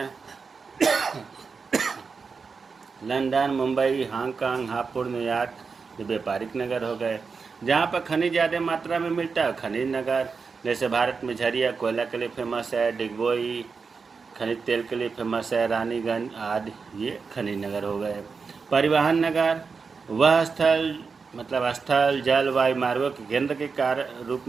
London, Mumbai, Hong Kong, Hapur, New York, ये व्यापारिक नगर हो गए। जहाँ पर खनिज ज़्यादा मात्रा में मिलता है खनिज नगर, जैसे भारत में झरिया कोयला के लिए फेमस है, डिगबोई खनिज तेल के लिए फेमस है, रानीगंज आदि, ये खनिज नगर हो गए। परिवहन नगर, वह स्थल मतलब स्थल, जल, वायु मार्गों के केंद्र के रूप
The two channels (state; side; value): quieter; left; 5.0 dB